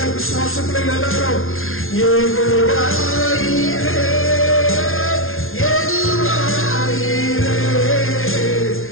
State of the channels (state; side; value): late; right; 0.61 ms